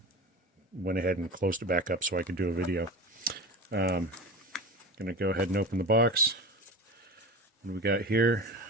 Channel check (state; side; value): normal; both; correlation 0.30